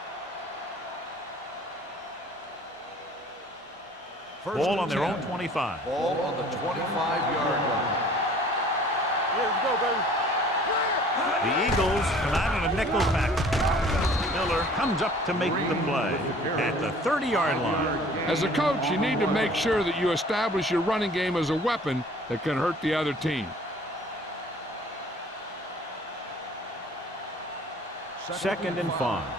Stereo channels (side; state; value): both; normal; correlation 0.51